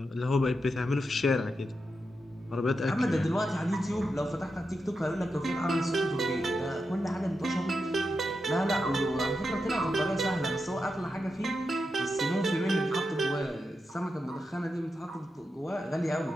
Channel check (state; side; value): normal; both; correlation 0.87